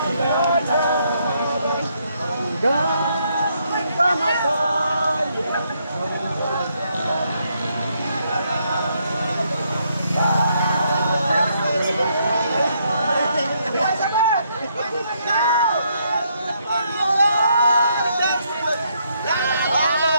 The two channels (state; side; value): inverted; both; correlation -0.74